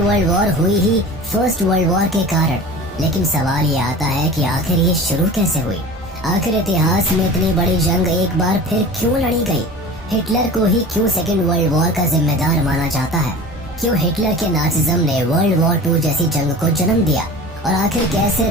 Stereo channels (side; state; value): both; normal; correlation 0.37